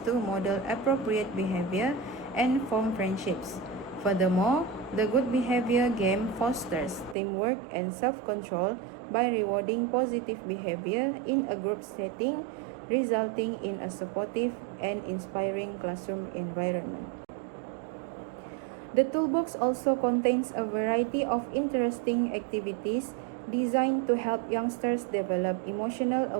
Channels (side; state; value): left; drops out; at 7.2 s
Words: to model appropriate behavior and form friendships. Furthermore, the good behavior game fosters teamwork and self-control by rewarding positive behavior in a group setting, resulting in a supportive and inspiring classroom environment. The toolbox also contains a variety of interesting activities designed to help youngsters develop emotional